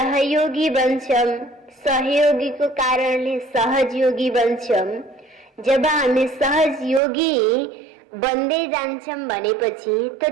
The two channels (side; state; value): left; drops out; at 7.0 s